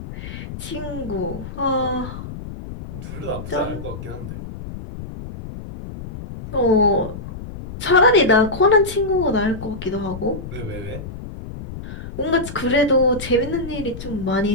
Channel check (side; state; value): left; noise; rumble, 10 dB below the sound